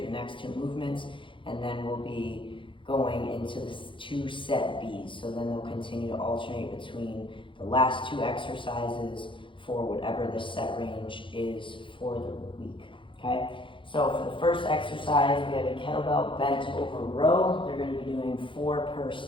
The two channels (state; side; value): late; right; 0.25 ms